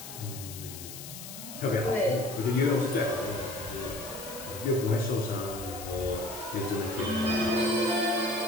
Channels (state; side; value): noise; left; hiss, 11 dB below the sound